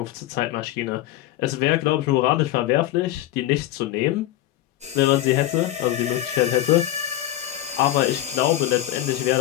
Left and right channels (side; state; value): right; quieter; 14.0 dB